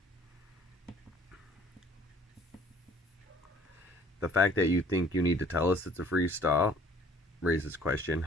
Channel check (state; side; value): normal; both; correlation 0.56